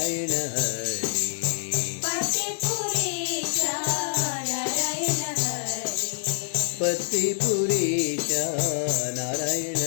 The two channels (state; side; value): silent; right; digital silence